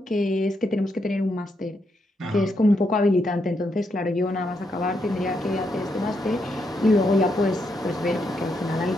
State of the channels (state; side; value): normal; both; correlation 0.80